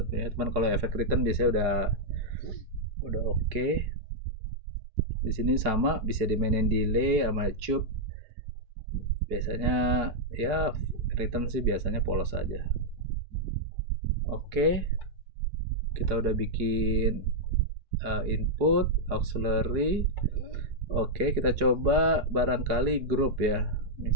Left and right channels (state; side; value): late; left; 4.7 ms